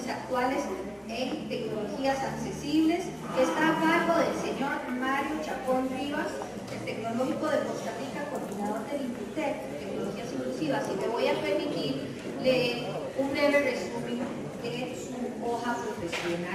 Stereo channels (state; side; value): identical; both; correlation 1.00